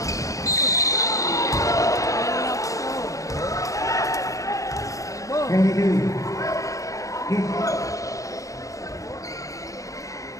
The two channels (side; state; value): right; late; 0.16 ms